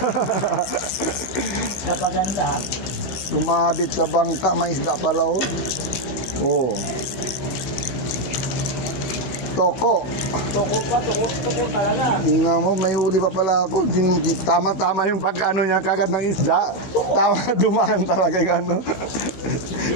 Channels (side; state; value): right; late; 15 ms